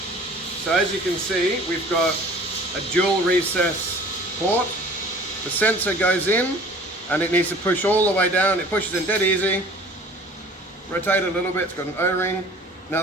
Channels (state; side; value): normal; both; correlation 0.47